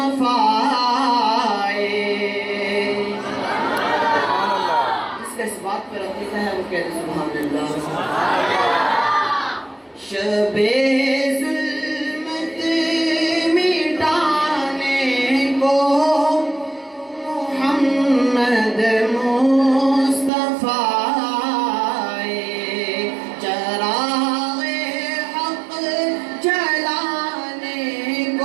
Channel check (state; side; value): drops out; left; at 20.3 s